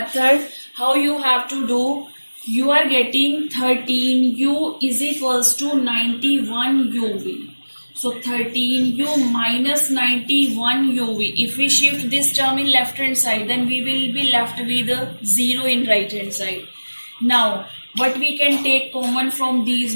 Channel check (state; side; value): inverted; both; correlation -1.00